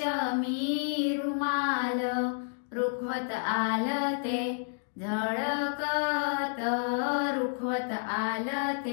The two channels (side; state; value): right; silent; digital silence